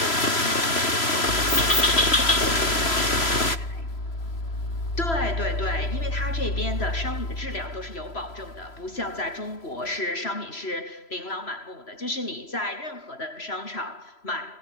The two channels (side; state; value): right; late; 3.0 ms